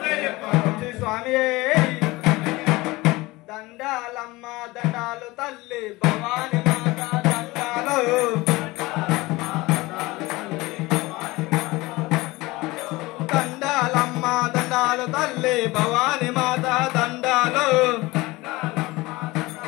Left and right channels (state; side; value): quieter; right; 21.2 dB